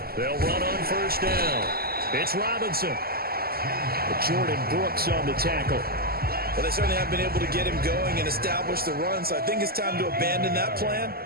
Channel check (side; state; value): left; late; 0.45 ms